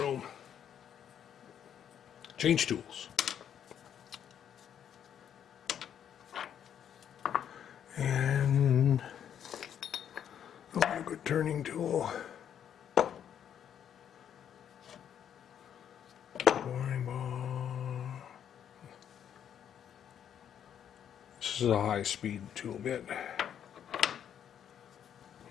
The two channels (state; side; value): quieter; right; 9.2 dB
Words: Change tools. And I want a good turning tool. Boring ball. This is a high-speed tool bit.